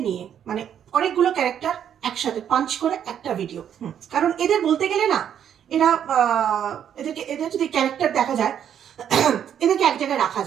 নিয়ে, মানে অনেকগুলো ক্যারেক্টার একসাথে পাঞ্চ করে একটা ভিডিও। কারণ এদের বলতে গেলে না, এরা এদের যদি ক্যারেক্টার দেখা যায়, এদেরকে এক জায়গায় রাখা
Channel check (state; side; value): quieter; left; 9.2 dB